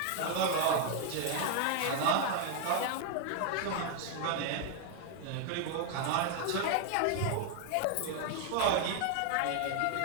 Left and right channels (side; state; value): both; different; correlation 0.00